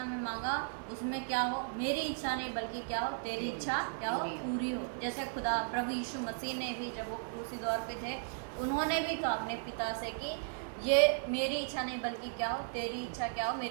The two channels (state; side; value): silent; left; digital silence